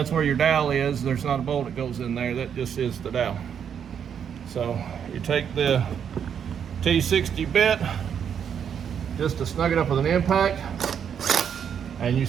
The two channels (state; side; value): quieter; left; 8.0 dB